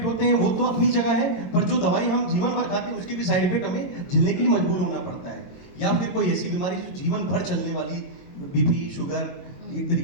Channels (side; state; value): right; late; 22 ms